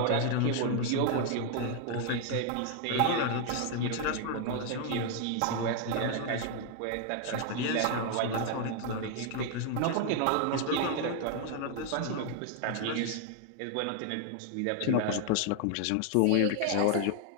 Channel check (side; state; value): both; different; correlation 0.00